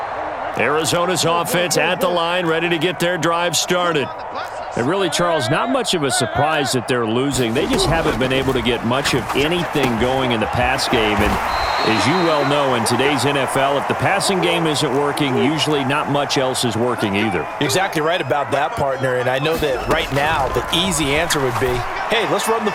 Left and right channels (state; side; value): identical; both; correlation 1.00